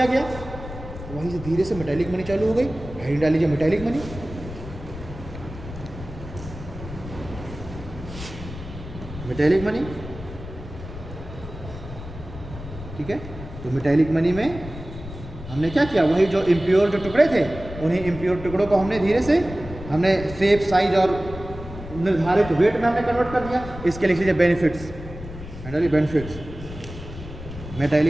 गया, वहीं से धीरे से मेटैलिक मनी चालू हो गई। हेडिंग डाल लीजिए मेटैलिक मनी। मेटैलिक मनी, ठीक है। तो मेटैलिक मनी में हमने क्या किया, वही जो इम्प्योर जो टुकड़े थे उन्हीं इम्प्योर टुकड़ों को हमने धीरे से हमने शेप साइज और निर्धारित वेट में हमने कन्वर्ट कर दिया। इसके लिख लीजिए बेनिफिट्स, बेनिफिट्स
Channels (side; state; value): left; noise; rumble, 12 dB below the sound